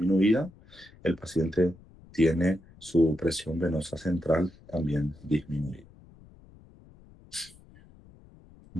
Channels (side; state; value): left; noise; rumble, 24 dB below the sound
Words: el paciente tiene su presión venosa central también disminuida.